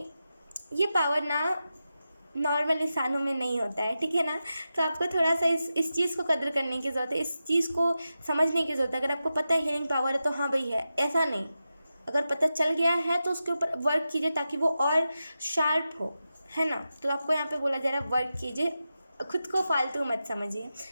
ये पावर ना नॉर्मल इंसानों में नहीं होता है, ठीक है ना। तो आपको थोड़ा सा इस चीज़ को कदर करने की ज़रूरत है, इस चीज़ को समझने की ज़रूरत है। अगर आपको पता है हीलिंग पावर है तो हाँ भाई है, ऐसा नहीं। अगर पता चल गया है तो उसके ऊपर वर्क कीजिए ताकि वो और शार्प हो, है ना। तो आपको यहाँ पे बोला जा रहा है वर्क कीजिए, खुद को फालतू मत समझिए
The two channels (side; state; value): both; inverted; correlation -0.91